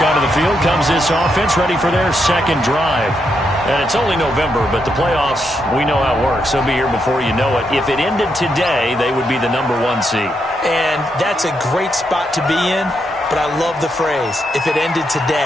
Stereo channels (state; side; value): normal; both; correlation 0.81